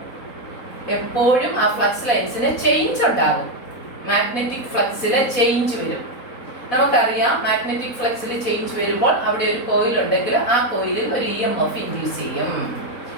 എപ്പോഴും ആ ഫ്ലക്സ് ലൈൻസിന് ചേഞ്ച് ഉണ്ടാകും. മാഗ്നറ്റിക് ഫ്ലക്സില് ചേഞ്ച് വരും. നമുക്കറിയാം, മാഗ്നറ്റിക് ഫ്ലക്സിൽ ചേഞ്ച് വരുമ്പോൾ അവിടെ ഒരു കോയിൽ ഉണ്ടെങ്കിൽ ആ കോയിലിൽ ഒരു EMF ഇൻഡ്യൂസ് ചെയ്യും.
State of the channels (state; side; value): late; right; 4.1 ms